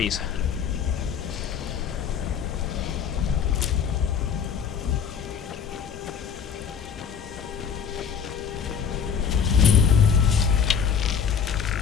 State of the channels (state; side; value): quieter; right; 7.2 dB